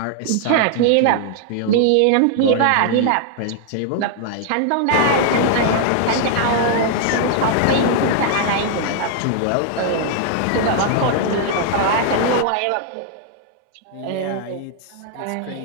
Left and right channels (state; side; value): different; both; correlation 0.00